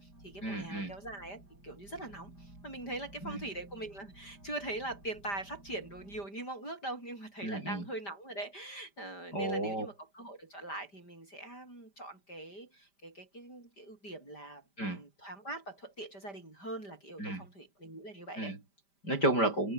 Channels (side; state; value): right; late; 5.0 ms